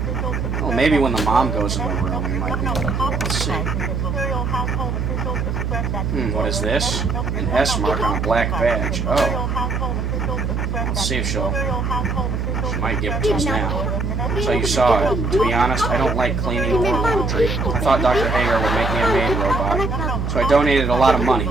Well, maybe when the mom goes in the room, we might be able to do it. Let's see. What is this? An S mark on a black badge. Oh. Let's see if she might give it to us now. So you saw it. To be honest, I don't like cleaning or laundry. I thought Dr. Hager would make me a maid robot, so I donated a lot of money.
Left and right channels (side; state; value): right; noise; hum, 1 dB below the sound